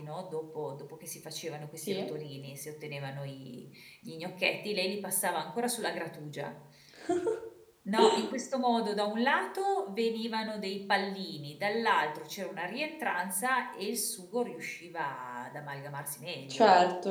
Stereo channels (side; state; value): both; identical; correlation 1.00